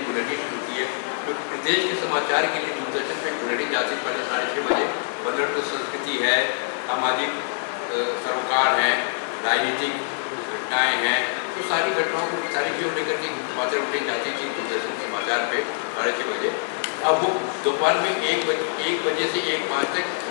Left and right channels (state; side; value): silent; right; digital silence